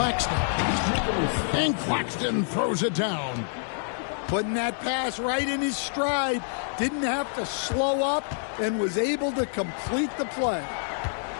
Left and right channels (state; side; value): silent; right; digital silence